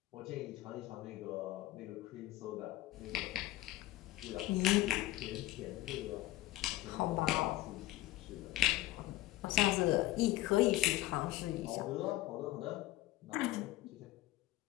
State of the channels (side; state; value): right; quieter; 16.1 dB